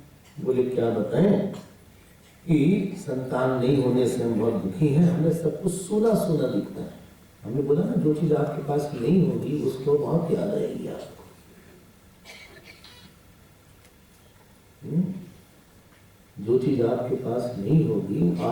बोले क्या बताएं कि संतान नहीं होने से हम बहुत दुखी हैं, हमें सब कुछ सूना सूना दिखता है। हमने बोला ना जो चीज आपके पास नहीं होगी उसको बहुत याद आएगी आपको। जो चीज आपके पास नहीं होगी,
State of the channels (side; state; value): both; identical; correlation 1.00